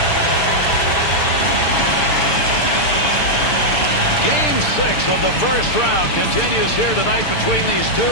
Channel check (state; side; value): late; right; 6.7 ms